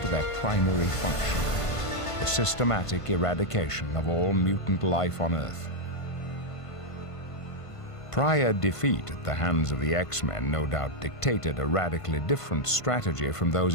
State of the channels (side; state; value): right; late; 1.5 ms